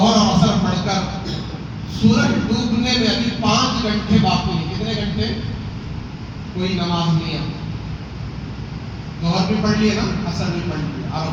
اور عصر پڑھ کر سورج ڈوبنے میں ابھی 5 گھنٹے باقی ہیں، کتنے گھنٹے؟ کوئی نماز نہیں ہے، ظہر بھی پڑھ لیے نا، عصر بھی پڑھ لیے،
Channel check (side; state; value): both; identical; correlation 1.00